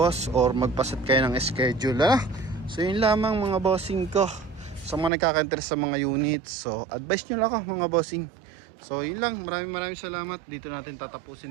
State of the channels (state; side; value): drops out; left; at 5.1 s